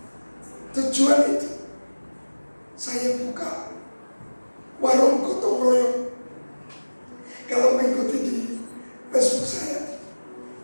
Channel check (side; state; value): both; inverted; correlation -1.00